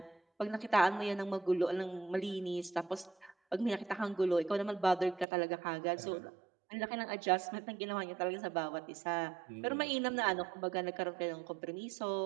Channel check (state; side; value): drops out; left; at 5.2 s